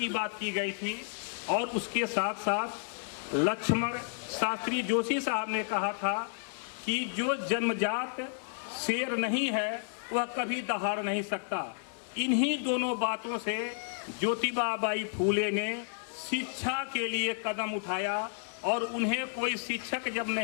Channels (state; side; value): silent; right; 57 dB below the other